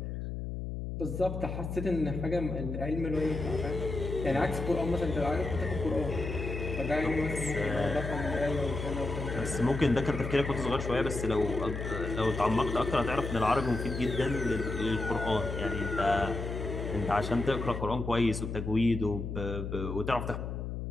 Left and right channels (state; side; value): noise; left; hum, 5 dB below the sound